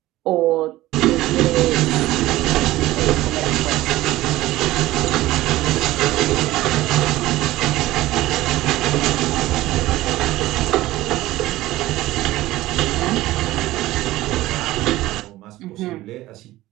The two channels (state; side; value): quieter; left; 16.7 dB